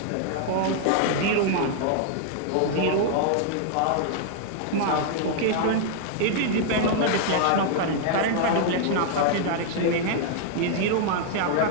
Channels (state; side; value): different; both; correlation -0.01